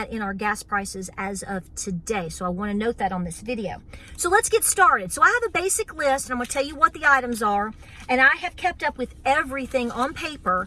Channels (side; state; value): both; identical; correlation 1.00